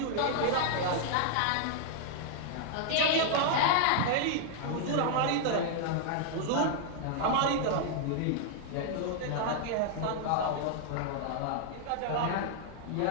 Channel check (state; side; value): different; both; correlation -0.01